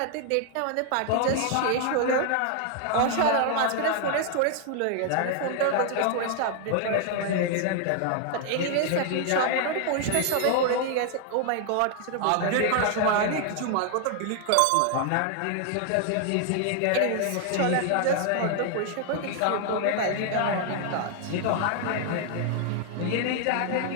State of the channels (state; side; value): different; both; correlation 0.00